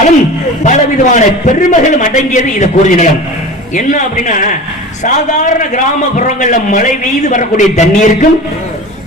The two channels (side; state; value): both; normal; correlation 0.34